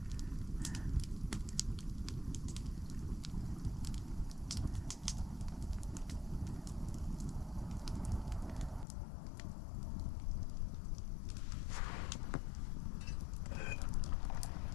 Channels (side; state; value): right; drops out; at 8.8 s